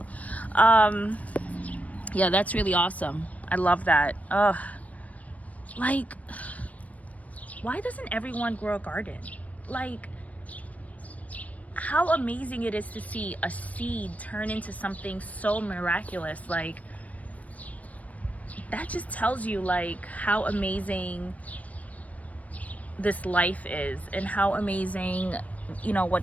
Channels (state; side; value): late; right; 0.069 ms